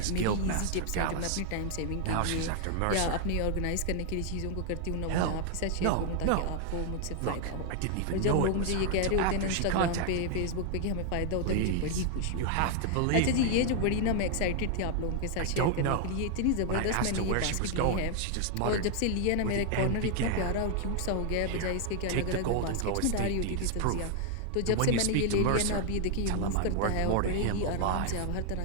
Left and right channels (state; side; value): different; both; correlation 0.00